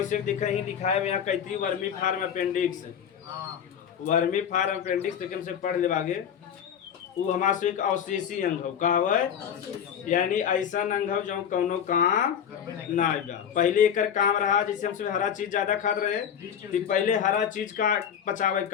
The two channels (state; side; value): quieter; right; 8.5 dB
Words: देखा ही दिखाया यहाँ कहती vermiform appendix, vermiform appendix लेकिन से पढ़ ले आगे। वो हमारा से एक अवशेषी अंग हो का है, यानी ऐसा अंग हो जो कौनो काम ना आएगा। पहले एक काम रहा जैसे हमसे हरा चीज ज्यादा खाते रहे तो पहले हरा चीज का पचावे